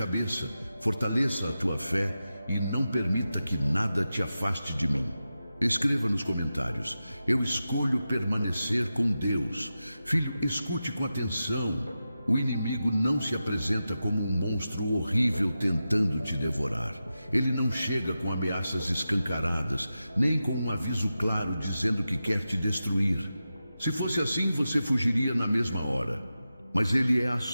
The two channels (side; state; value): both; inverted; correlation -0.92